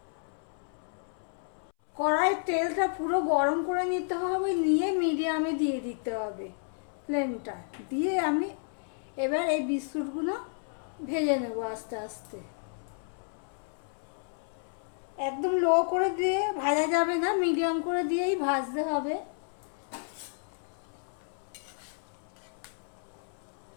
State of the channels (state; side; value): silent; right; 57 dB below the other